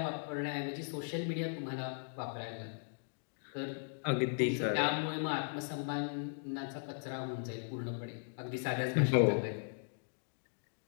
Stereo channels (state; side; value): silent; right; digital silence